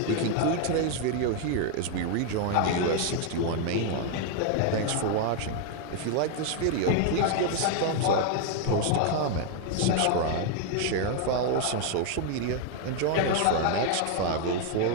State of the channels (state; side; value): different; both; correlation 0.00